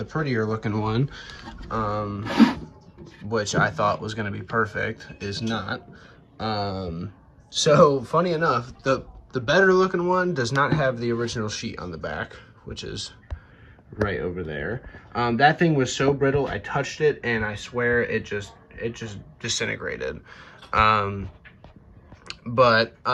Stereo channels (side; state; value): both; identical; correlation 1.00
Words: prettier looking one, which I thought was going to be perfect, is not. So funny enough, the better looking one does not have the original sheet on the back, which is right over there. That thing was so brittle, I touched it and I swear it just disintegrated. But